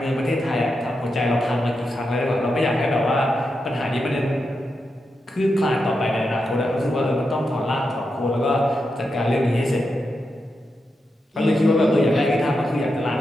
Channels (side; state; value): both; normal; correlation 0.87